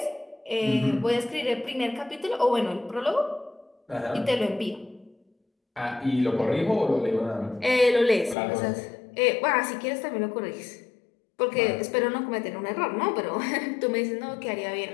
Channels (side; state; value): right; drops out; at 8.3 s